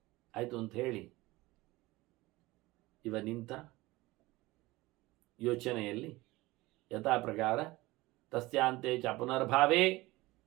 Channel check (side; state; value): left; quieter; 20.2 dB